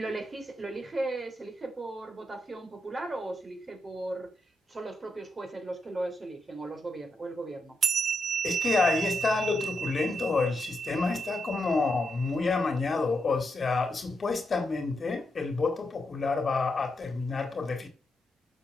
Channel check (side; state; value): both; normal; correlation 0.83